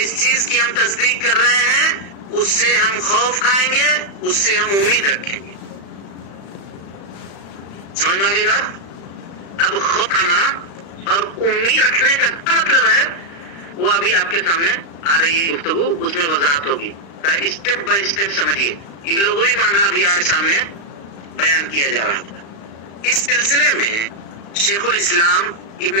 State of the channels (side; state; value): right; late; 35 ms